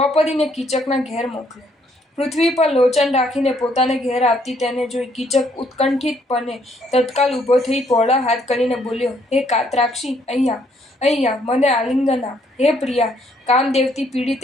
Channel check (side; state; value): both; normal; correlation 0.68